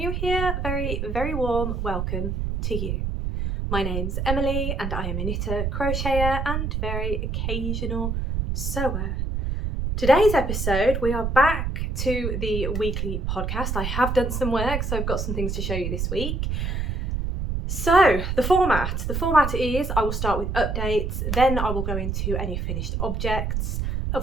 here, very warm welcome to you. My name's Emily and I am a knitter, crocheter and very occasional sewer. Today's episode, we are back to the weekly podcast. I have done some work, so I've got some things to show you this week. So the format is I will start with updates, then I will go into any finished objects,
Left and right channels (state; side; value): noise; right; rumble, 1 dB below the sound